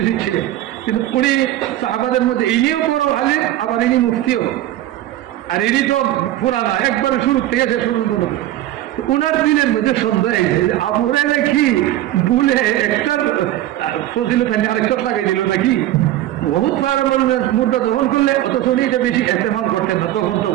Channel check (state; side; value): quieter; left; 14.0 dB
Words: ছিলেন, কিন্তু উনি সাহাবাদের মধ্যে ইনিও বড় আলেম, আবার ইনি মুফতিও, আর ইনি তো পুরানা একবারে শুরু থেকে শেষ পর্যন্ত। উনার দিনের মধ্যে সন্দেহ হয়েছে যে আবু হুরায়রা কি ভুলে একটা ফজিলত আরেকটা লাগাই দিল নাকি, বহুত মুদ্রা গ্রহণ করলে অথচ উনি এটা বেশি ইস্তেমাল করতেন না তখন। তো